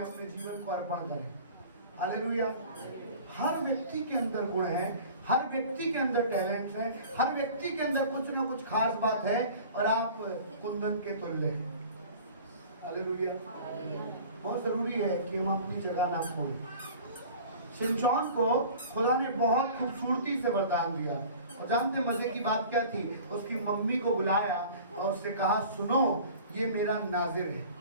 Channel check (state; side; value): inverted; both; correlation -0.43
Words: अपने जीवन को अर्पण करें। हालेलुया। हर व्यक्ति के अंदर गुण है, हर व्यक्ति के अंदर टैलेंट है, हर व्यक्ति के अंदर कुछ ना कुछ खास बात है और आप कुंदन के तुल्य हैं। हालेलुया। बहुत जरूरी है कि हम अपनी जगह ना खोएं। शिमशोन को खुदा ने बहुत खूबसूरती से वरदान दिया और जानते मजे की बात क्या थी? उसकी मम्मी को बुलाया और उससे कहा, सुनो ये मेरा नाजिर है,